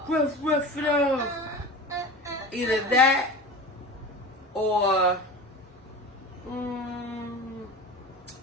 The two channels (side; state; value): both; normal; correlation 0.32